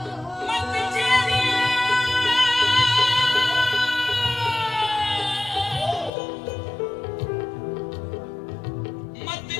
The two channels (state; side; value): drops out; right; at 6.1 s